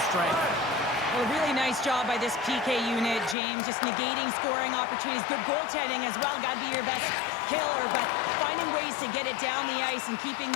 strength. Well, a really nice job by this PK unit, James. Just negating scoring opportunities. Good goaltending as well. Got to be your best killer, but finding ways to get it down the ice and keeping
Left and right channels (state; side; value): drops out; right; at 3.4 s